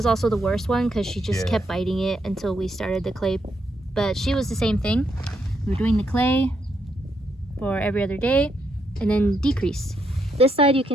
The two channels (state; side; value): normal; both; correlation 0.78